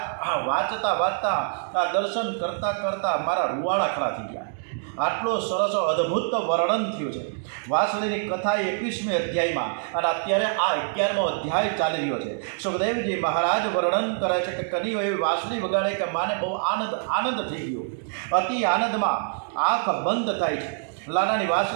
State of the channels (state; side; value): silent; left; digital silence